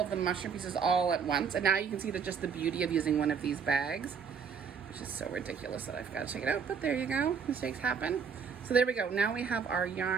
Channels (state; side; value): quieter; left; 6.4 dB